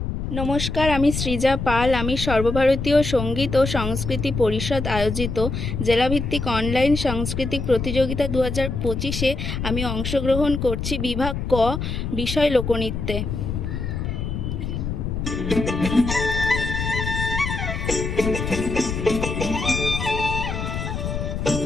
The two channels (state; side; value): noise; left; rumble, 4 dB below the sound